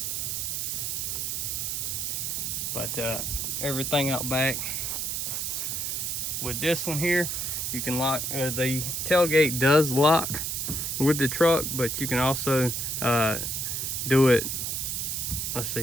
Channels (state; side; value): noise; right; hiss, 1 dB below the sound